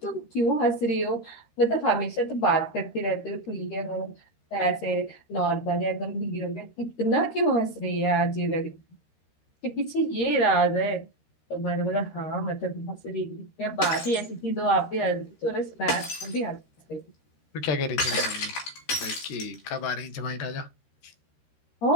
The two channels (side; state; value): right; late; 13 ms